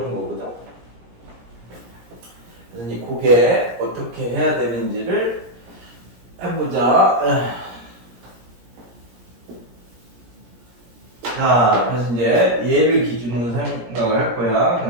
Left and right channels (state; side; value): late; left; 17 ms